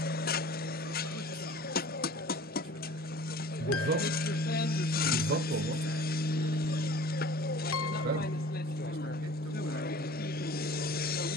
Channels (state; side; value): normal; both; correlation 0.44